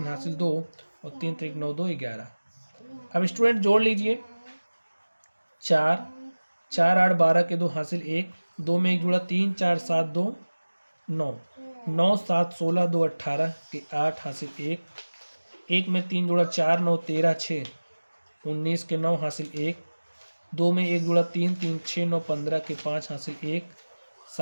हासिल 2 और 3 3 9 2 11। अब स्टूडेंट जोड़ लीजिए, 4 4 8 12 के 2 हासिल 1, 2 में 1 जुड़ा 3 4 7 2 9, 9 7 16 2 18 के 8 हासिल 1, 1 में 3 जुड़ा 4 9 13 6 19 के 9 हासिल 1, 2 में 1 जुड़ा 3 3 6 9 15 के 5 हासिल 1,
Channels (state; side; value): inverted; both; correlation -1.00